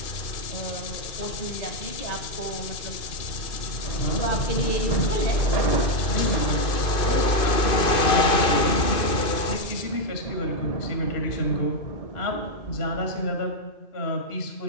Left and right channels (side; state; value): right; late; 2.5 ms